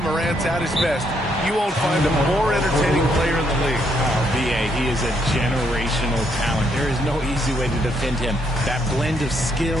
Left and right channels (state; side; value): normal; both; correlation 0.74